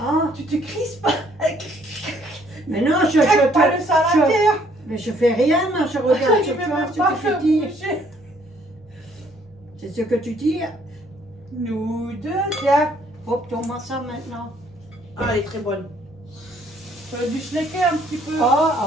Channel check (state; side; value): normal; both; correlation 0.64